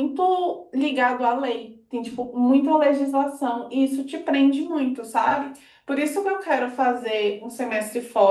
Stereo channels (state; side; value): identical; both; correlation 1.00